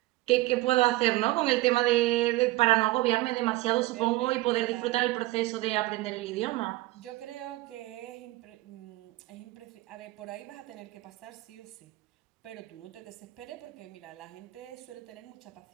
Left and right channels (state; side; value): quieter; left; 18.9 dB